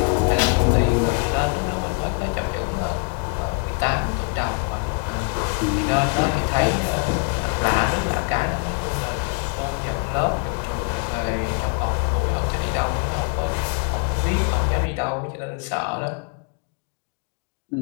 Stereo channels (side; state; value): right; quieter; 34.6 dB